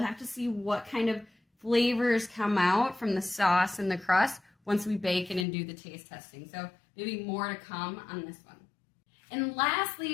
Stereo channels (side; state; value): right; drops out; at 5.5 s